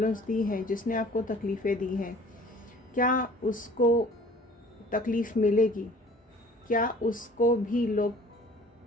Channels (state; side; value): normal; both; correlation 0.50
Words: दी हैं, जिसने आपको तकलीफ़ें दी हैं, क्या उसको तकलीफ़ मिलेगी, क्या उसको भी लोग